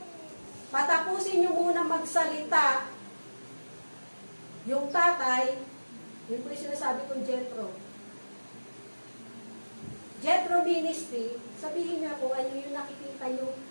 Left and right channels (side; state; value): both; inverted; correlation -1.00